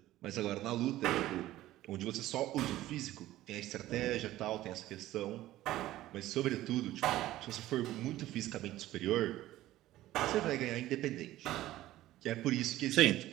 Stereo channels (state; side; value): quieter; left; 15.2 dB